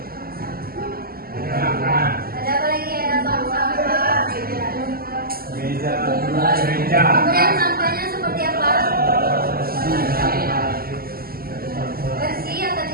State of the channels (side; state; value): left; late; 0.43 ms